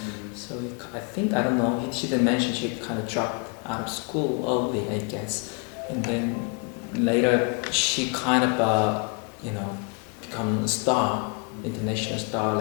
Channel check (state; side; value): quieter; right; 36.0 dB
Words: So I think I don't know. She didn't mention she kind of dropped out of school early, I guess, and then later she kind of you know become a star, international star,